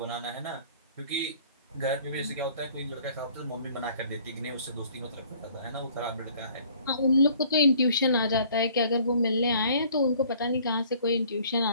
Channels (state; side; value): inverted; both; correlation -0.56